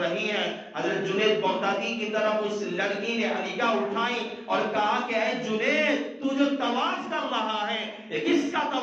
ہے؟ حضرت جنید بغدادی کی طرف اس لڑکی نے نگاہ اٹھائی اور کہا کہ اے جنید، تو جو طواف کر رہا ہے یہ کس کا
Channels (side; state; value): both; identical; correlation 1.00